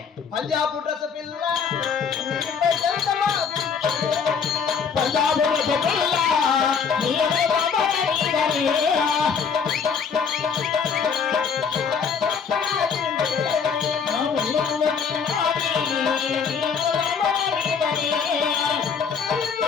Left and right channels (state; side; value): quieter; right; 6.2 dB